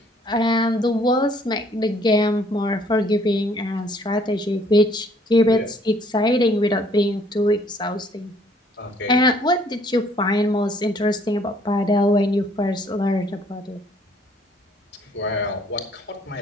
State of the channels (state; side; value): normal; both; correlation 0.62